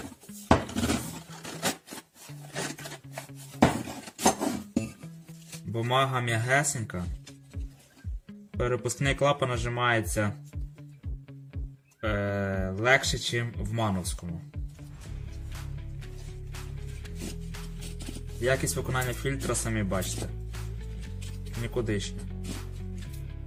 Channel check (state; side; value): identical; both; correlation 1.00